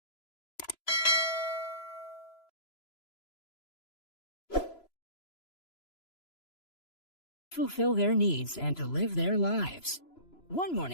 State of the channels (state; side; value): late; right; 3.0 ms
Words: fulfill their needs and to live their lives. One